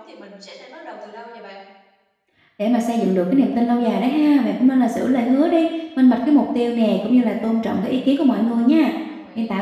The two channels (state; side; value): identical; both; correlation 1.00